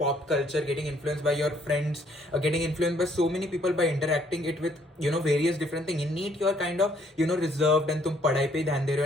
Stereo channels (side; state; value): both; normal; correlation 0.65